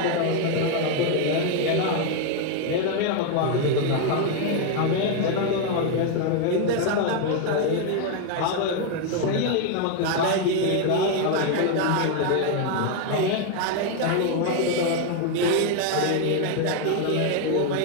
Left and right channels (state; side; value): different; both; correlation 0.01